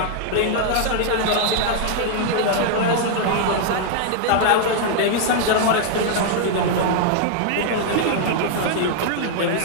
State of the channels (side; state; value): both; different; correlation 0.00